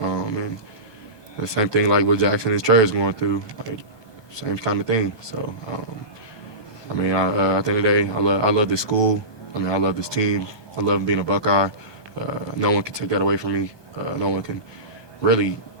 the same thing like what Jackson and Trey is going through, like, same kind of thing. So, I mean, at the end of the day, I love this school. I mean, I love this team. I love being a Buckeye. No one can take that away from me. No one can really,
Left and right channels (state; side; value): late; right; 1.2 ms